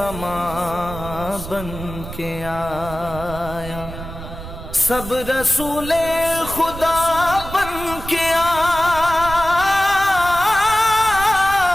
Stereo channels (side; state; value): right; noise; rumble, 11 dB below the sound